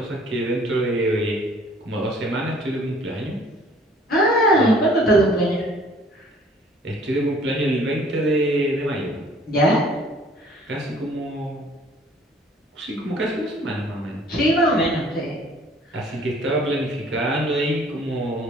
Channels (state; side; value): normal; both; correlation 0.55